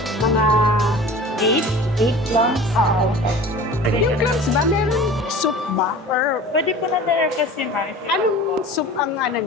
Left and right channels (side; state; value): both; normal; correlation 0.40